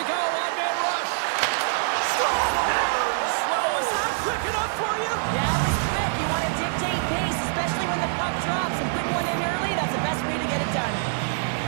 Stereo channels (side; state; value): left; silent; 60 dB below the other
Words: go, one-man rush. Scores! Well, was that quick enough for you? Yeah, it was quick. You want to dictate pace, especially when the puck drops, and putting one in early, that's the best way to get it done.